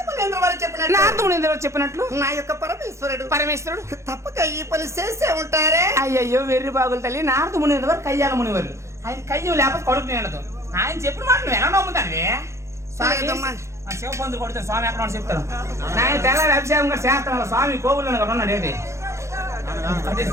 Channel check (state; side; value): late; left; 0.14 ms